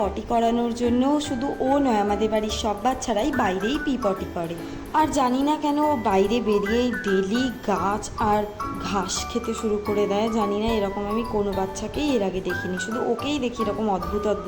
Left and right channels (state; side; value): identical; both; correlation 1.00